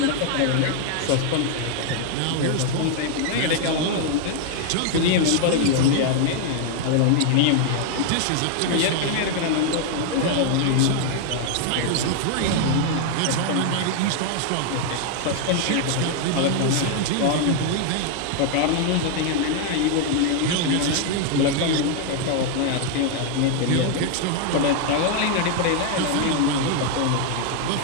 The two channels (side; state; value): both; different; correlation 0.00